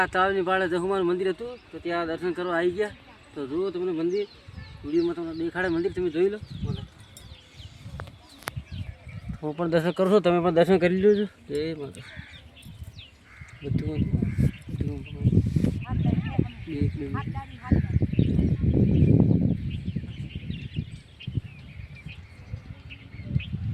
તળાવની પાળે જહુમાનું મંદિર હતું, તો ત્યાં દર્શન કરવા આવી ગયા. તો જુઓ તમને મંદિર, વિડીયોમાં તમને દેખાડે મંદિર, તમે જોઈ લો. હું પણ દર્શન કરું છું, તમે પણ દર્શન કરી લેજો. જય માતા. બધું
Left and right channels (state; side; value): identical; both; correlation 1.00